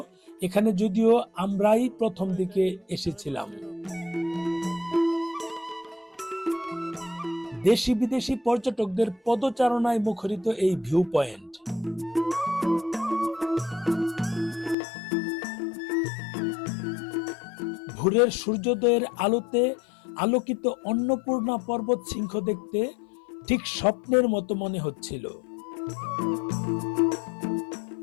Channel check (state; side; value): drops out; right; at 14.8 s